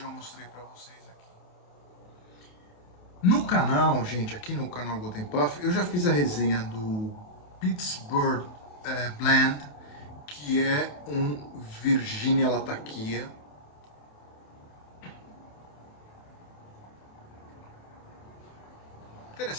mostrei para vocês aqui. No canal, gente, aqui no canal Golden Puff, eu já fiz a resenha do Pittsburgh Blend, que é um Virginia Latakia.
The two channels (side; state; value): right; late; 28 ms